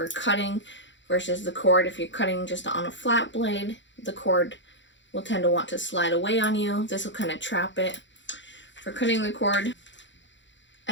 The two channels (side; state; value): right; late; 0.54 ms